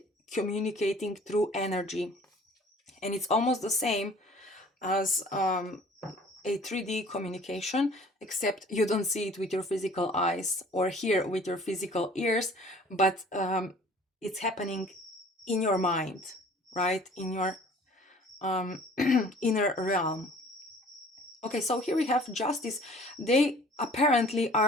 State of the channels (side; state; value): both; normal; correlation 0.50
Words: through energy, and it's almost the same as a 3D communication, except you don't see it with your physical eyes or hear with your physical ears, but it's happening in your mind, right? In your inner realm. Okay, so here we have Justice. They apparently